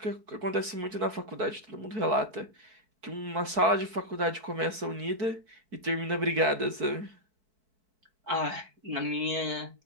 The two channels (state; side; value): late; left; 4.6 ms